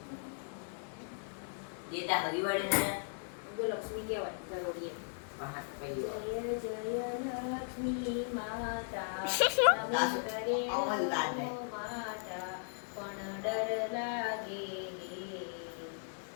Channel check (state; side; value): silent; right; digital silence